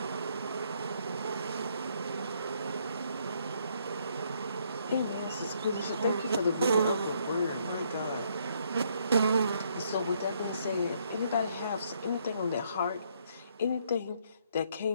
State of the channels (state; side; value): inverted; both; correlation -0.70